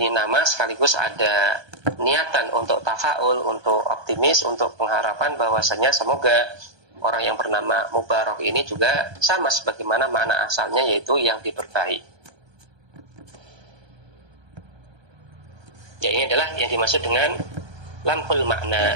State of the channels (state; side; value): late; left; 1.2 ms